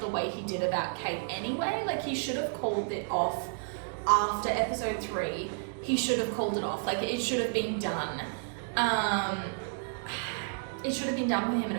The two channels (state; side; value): silent; left; digital silence